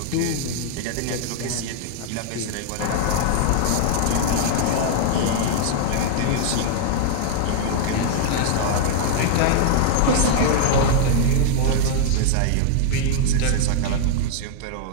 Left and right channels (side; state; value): both; different; correlation -0.01